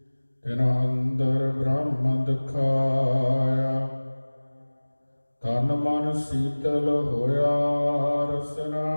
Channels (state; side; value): inverted; both; correlation -1.00